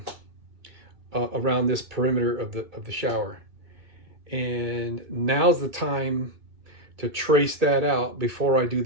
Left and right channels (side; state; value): left; late; 2.6 ms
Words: around this perimeter of the shower. And now's the time to trace that out before I do